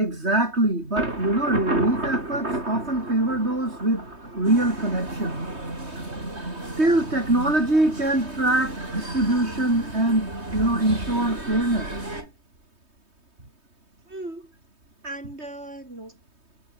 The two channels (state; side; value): late; left; 3.2 ms